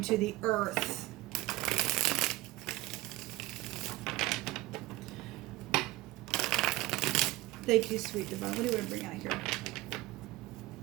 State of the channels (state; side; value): quieter; left; 18.4 dB